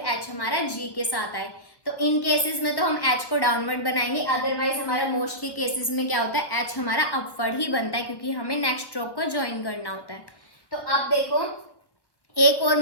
एच हमारा जी के साथ आए। तो इन केसेस में तो हम एच को डाउनवर्ड बनाएंगे, अदरवाइज हमारा मोस्टली केसेस में क्या होता है, एच हमारा अपवर्ड ही बनता है क्योंकि हमें नेक्स्ट स्ट्रोक को ज्वाइन करना होता है। तो अब देखो एक और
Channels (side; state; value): right; late; 1.3 ms